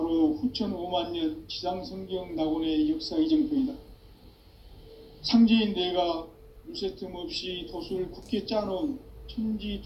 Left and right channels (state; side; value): identical; both; correlation 1.00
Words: 후천 5만 년 지상성경 낙원의 역사 이정표이다. 상제인 내가 물새 틈 없이 도수를 굳게 짜놓은